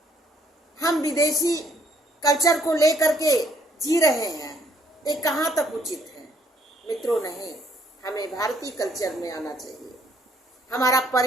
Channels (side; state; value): both; normal; correlation 0.67